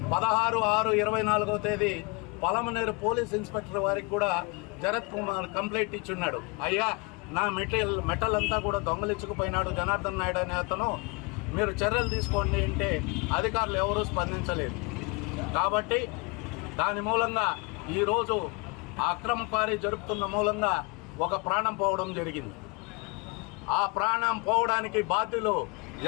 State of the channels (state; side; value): quieter; right; 28.6 dB